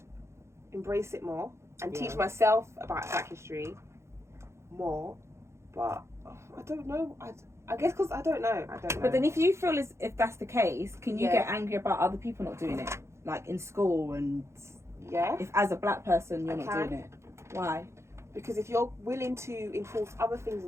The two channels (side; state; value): left; late; 0.13 ms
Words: embrace it more and teach myself about Black history more. But I don't know. I guess because I don't know. But then if you feel as if that's the case, can you get angry about other people not doing it? Like in school and... Yeah. If as a black person you're not doing it. Why? Because if you're willing to enforce other things